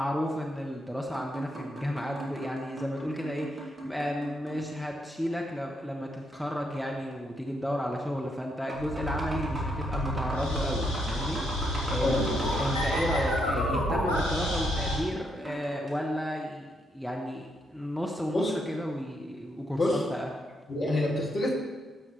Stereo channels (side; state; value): both; normal; correlation 0.77